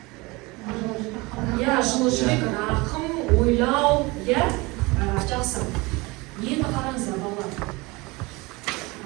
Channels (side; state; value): left; quieter; 24.0 dB